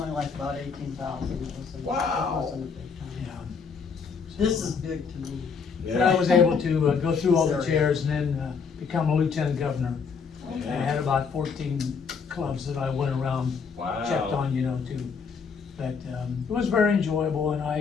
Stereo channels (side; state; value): right; quieter; 5.7 dB